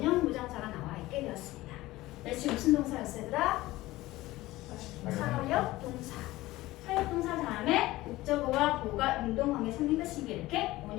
부정사가 나와 있게 되었습니다. 지금 무슨 동사였어 얘들아? 사역 동사. 사역 동사 다음에 목적어와 보호가 능동관계 성립했으니까 이렇게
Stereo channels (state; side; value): quieter; right; 17.9 dB